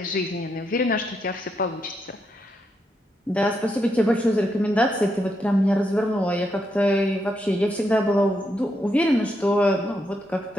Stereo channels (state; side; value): normal; both; correlation 0.81